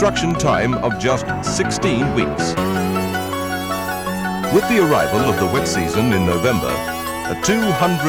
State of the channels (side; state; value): both; identical; correlation 1.00